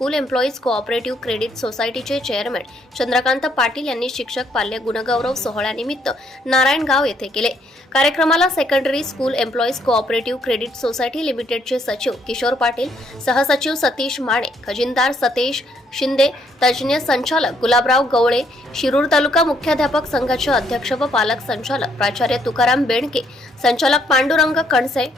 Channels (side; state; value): both; normal; correlation 0.70